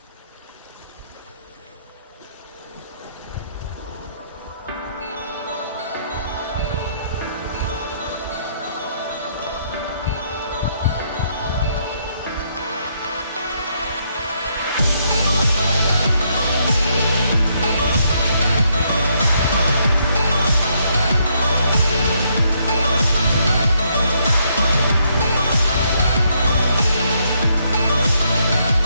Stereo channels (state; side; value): inverted; both; correlation -0.74